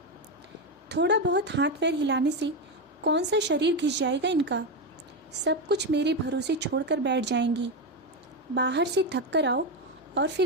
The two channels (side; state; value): both; normal; correlation 0.11